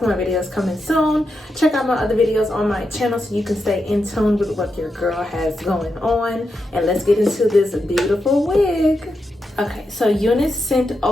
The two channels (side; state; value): both; normal; correlation 0.86